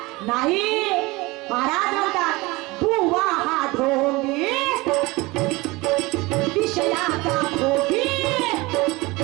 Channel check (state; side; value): quieter; left; 22.6 dB